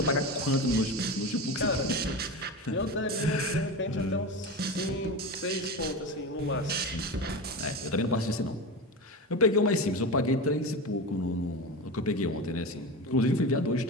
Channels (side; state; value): both; normal; correlation 0.24